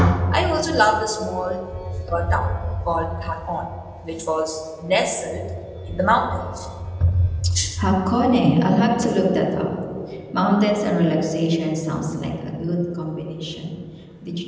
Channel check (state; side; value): identical; both; correlation 1.00